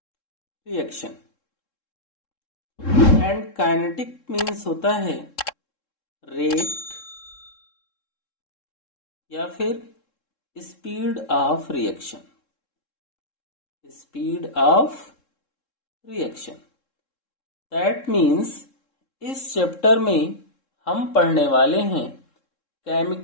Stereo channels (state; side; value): late; right; 3.7 ms